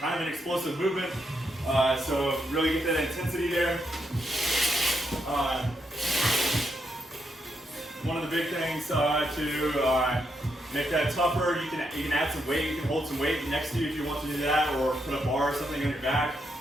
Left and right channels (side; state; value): both; normal; correlation 0.80